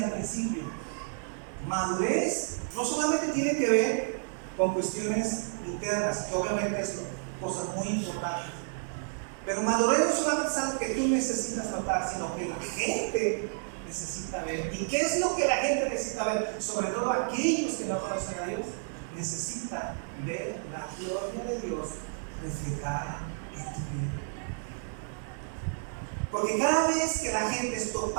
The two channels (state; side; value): silent; left; digital silence